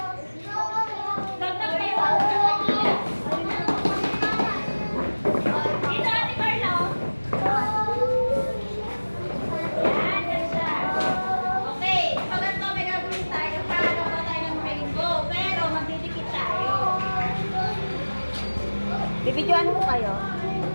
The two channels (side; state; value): both; inverted; correlation -1.00